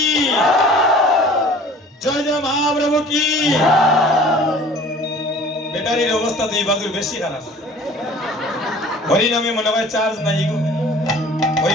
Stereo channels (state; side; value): normal; both; correlation 0.47